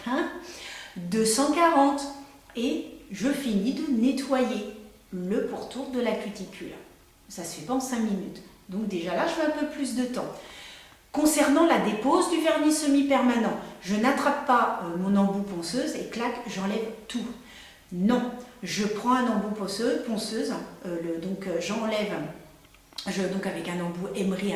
240. Et je finis de nettoyer le pourtour de la cuticule. Ça ne se fait pas en 5 minutes. Donc déjà là, je fais un peu plus de temps. Concernant la dépose du vernis semi-permanent, je n'attrape pas mon embout ponceuse et clac, j'enlève tout. Non, je prends un embout ponceuse, j'enlève, donc avec un embout émery,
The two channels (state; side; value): identical; both; correlation 1.00